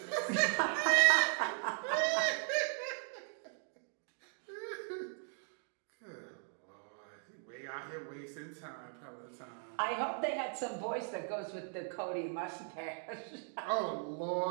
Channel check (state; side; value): silent; left; 52 dB below the other